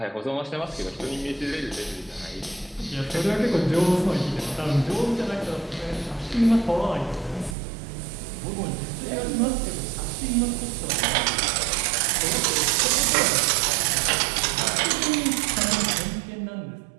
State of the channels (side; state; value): left; drops out; at 7.6 s